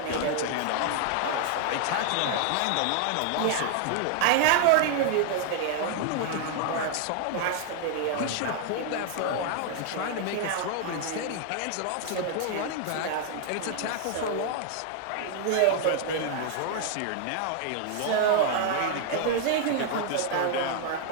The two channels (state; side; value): different; both; correlation 0.00